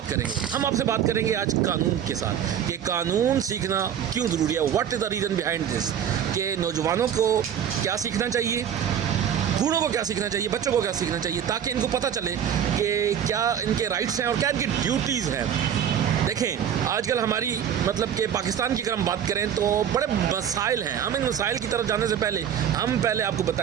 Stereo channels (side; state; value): left; quieter; 9.0 dB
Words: करेंगे, हम आपसे बात करेंगे आज कानून के साथ कि कानून सीखना क्यों ज़रूरी है। What is the reason behind this, कि नौजवानों को क्या सीखना चाहिए, बूढ़ों को क्या सीखना चाहिए, बच्चों को क्या सीखना चाहिए, ताकि इनको पता चले कि क्या इनके राइट्स हैं और क्या इनकी ड्यूटीज़ हैं। देखें, आजकल हमारी कि पाकिस्तान की अगर हम बात करें तो बड़े मसाइल हैं। हम इन मसाइल की तरफ जाने से पहले आपको